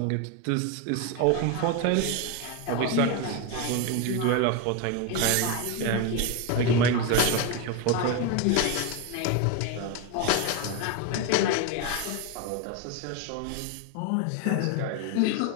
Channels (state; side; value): different; both; correlation 0.02